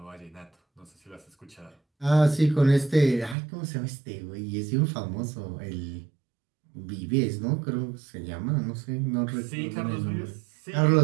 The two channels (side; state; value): left; drops out; at 3.4 s